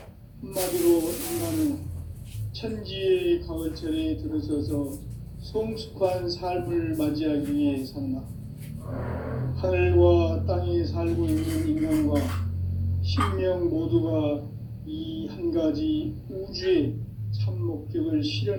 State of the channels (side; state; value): both; identical; correlation 1.00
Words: 한마디로 인간은 천지의 가을철에 들어서서 성숙한 삶을 맞이하기 위해 산다. 하늘과 땅에 살고 있는 인간과 신명 모두가 이 한 가지 우주의 참 목적을